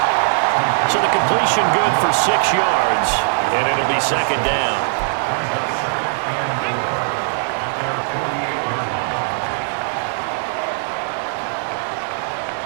So the completion good for 6 yards, and it'll be 2nd down.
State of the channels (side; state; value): left; silent; digital silence